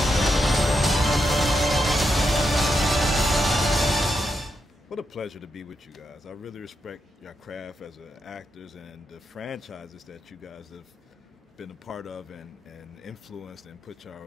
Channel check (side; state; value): both; normal; correlation 0.83